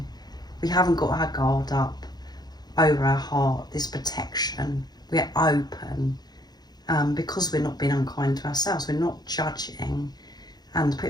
We haven't got our guard up over our heart, this protection. We're open because we're not being unkind to ourselves. We're not judging and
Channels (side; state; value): right; late; 0.19 ms